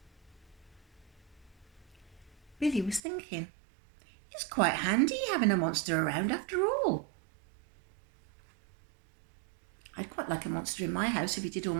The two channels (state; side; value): drops out; left; at 3.0 s